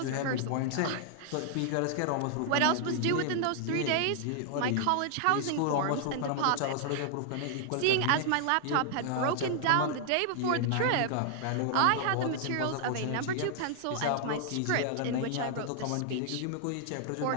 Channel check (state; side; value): different; both; correlation 0.00